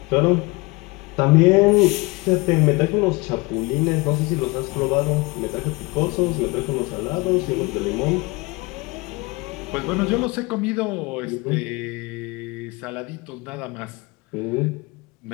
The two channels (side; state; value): right; quieter; 25.2 dB